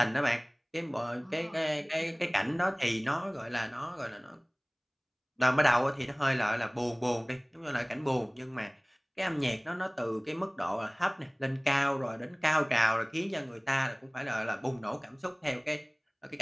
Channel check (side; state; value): both; identical; correlation 1.00